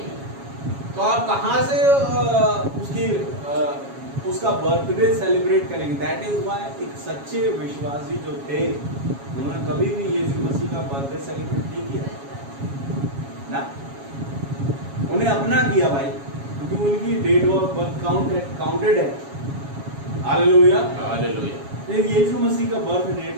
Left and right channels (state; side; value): late; left; 7.3 ms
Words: तो आप कहां से उसका बर्थडे सेलिब्रेट करेंगे? दैट इज व्हाई एक सच्चे विश्वासी जो थे उन्होंने कभी भी यीशु मसीह का बर्थडे सेलिब्रेट नहीं किया ना, उन्हें अपना किया भाई, क्योंकि उनकी डेट ऑफ बर्थ काउंटेड है। हालेलुया। हालेलुया। यीशु मसीह का बर्थ